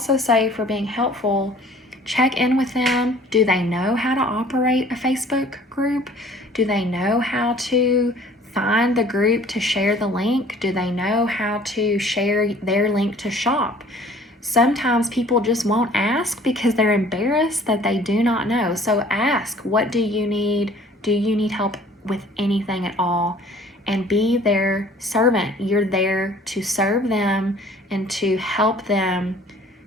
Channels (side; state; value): both; normal; correlation 0.52